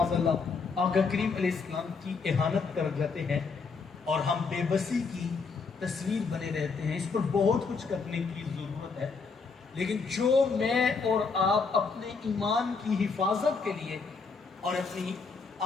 اللہ آقا کریم علیہ السلام کی اہانت کر جاتے ہیں اور ہم بے بسی کی تصویر بنے رہتے ہیں۔ اس پر بہت کچھ کرنے کی ضرورت ہے، لیکن جو میں اور آپ اپنے ایمان کی حفاظت کے لیے اور اپنی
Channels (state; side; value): quieter; right; 4.8 dB